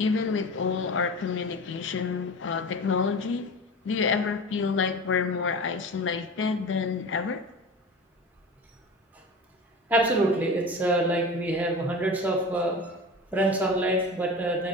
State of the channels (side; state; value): both; normal; correlation 0.32